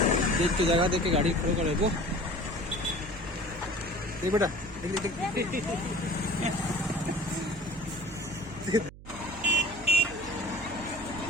देख के जगह देख के गाड़ी खड़े करे वो देख बेटा देख।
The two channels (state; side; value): noise; right; hum, 17 dB below the sound